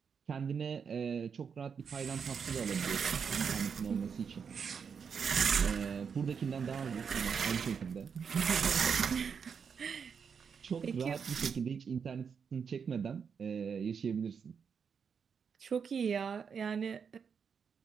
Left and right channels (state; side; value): quieter; left; 6.5 dB